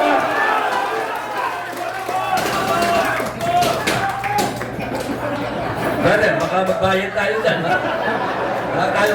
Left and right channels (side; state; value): both; identical; correlation 1.00